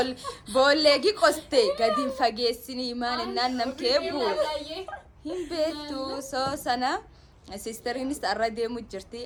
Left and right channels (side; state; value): both; identical; correlation 1.00